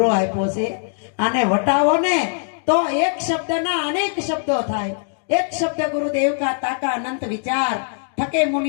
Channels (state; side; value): silent; right; digital silence